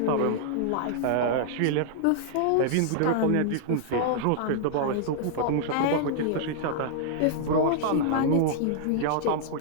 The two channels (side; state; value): both; different; correlation -0.01